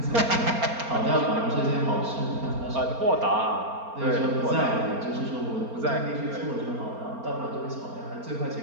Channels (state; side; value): late; left; 4.3 ms